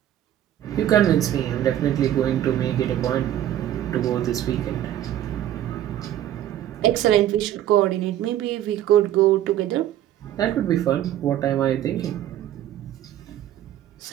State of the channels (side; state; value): left; quieter; 12.0 dB